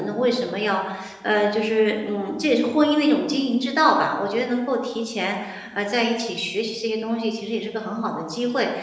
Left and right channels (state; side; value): identical; both; correlation 1.00